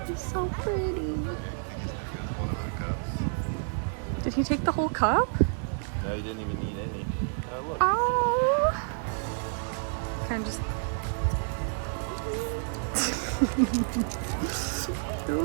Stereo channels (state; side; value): silent; left; digital silence